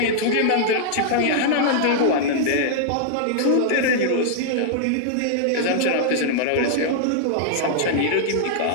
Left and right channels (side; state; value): both; different; correlation -0.01